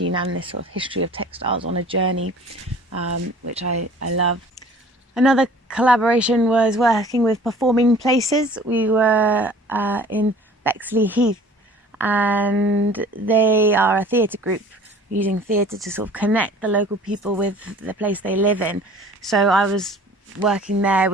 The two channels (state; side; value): normal; both; correlation 0.48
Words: and this sort of history of textiles on a journey, which I love. Another collaboration was working with Performing Places. We were in Bexley Heath, and they are a theatre group using theatre to sort of connect the local people with the place they live in. So I was working there